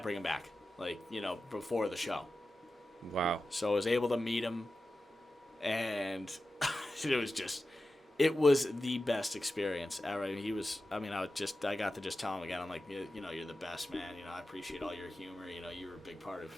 him back, like, before the show. Wow. So I was able to meet him, and it was the best experience ever. I got to just tell him again, I'm like, you're the best, man. I appreciate all your humor. You're a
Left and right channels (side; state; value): both; normal; correlation 0.93